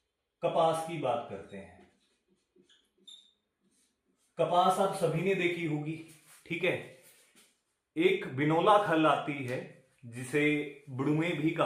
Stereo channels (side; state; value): both; identical; correlation 1.00